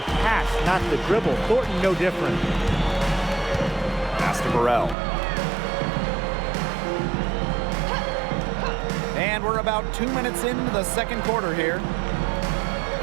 pass, not the dribble. Thornton, no different. Pass to Burrell. And we're about 2 minutes into the second quarter here.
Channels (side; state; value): left; drops out; at 5.0 s